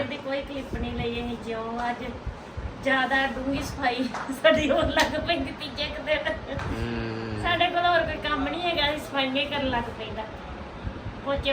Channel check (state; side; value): identical; both; correlation 1.00